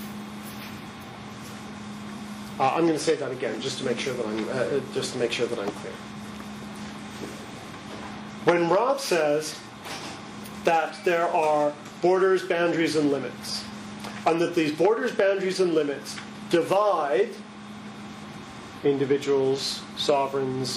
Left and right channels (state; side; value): identical; both; correlation 1.00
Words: I'm going to say that again, just to make sure that I'm clear. When Rob says that there are borders, boundaries, and limits, and that these borders, boundaries, and limits divide individuals,